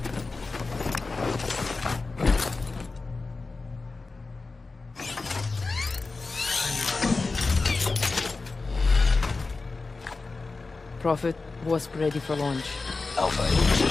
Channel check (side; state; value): right; quieter; 3.8 dB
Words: Prophet, Wasp ready for launch. Alpha in